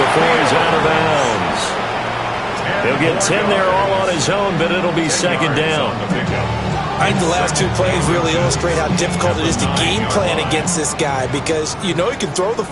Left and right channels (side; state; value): both; identical; correlation 1.00